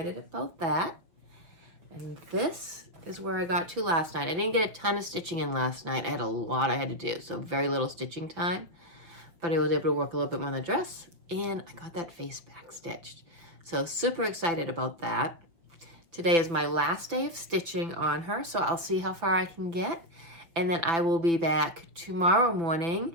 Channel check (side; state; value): left; late; 5.7 ms